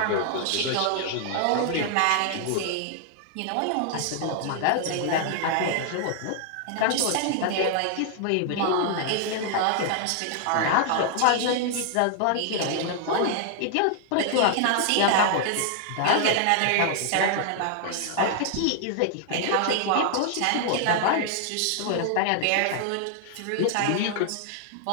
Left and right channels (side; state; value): both; different; correlation 0.00